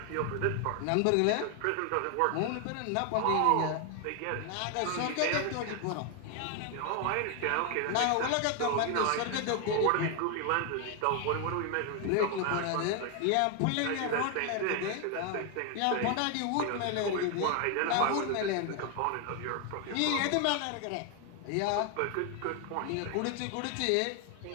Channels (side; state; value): both; different; correlation 0.01